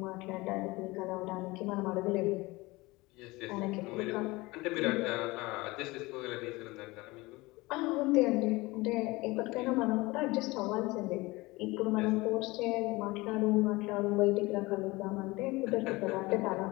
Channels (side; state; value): right; quieter; 21.9 dB